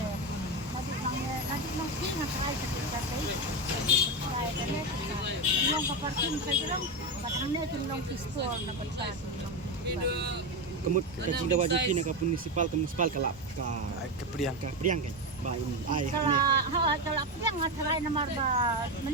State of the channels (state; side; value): normal; both; correlation 0.14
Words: nanti mang sing ngai ketika terprai kena long ka parking sajrong padang ne tin long pistol na patang kemut kacing dawa juki nak municipal ke municipal kalap ke priang kan ba ai kalau priang ngasarai nomor ba